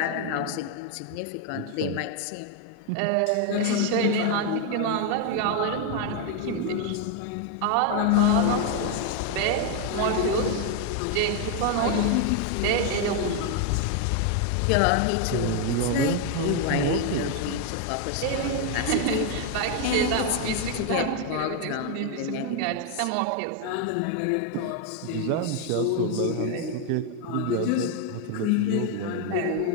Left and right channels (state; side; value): different; both; correlation 0.01